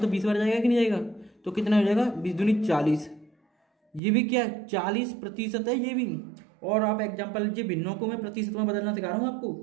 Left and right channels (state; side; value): drops out; left; at 4.0 s